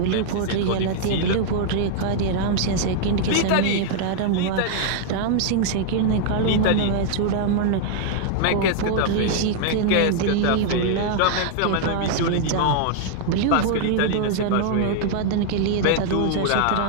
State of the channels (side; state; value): both; different; correlation -0.01